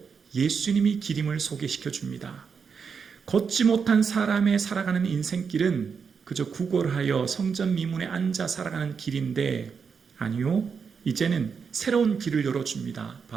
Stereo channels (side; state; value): left; quieter; 6.0 dB